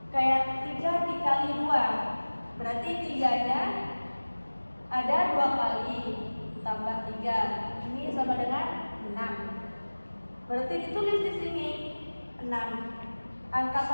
Kayak 3 dikali 2, berarti 3-nya ada 2 kali tambah 3, ini sama dengan 6. Berarti ditulis di sini 6. Angka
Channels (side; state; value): both; inverted; correlation -1.00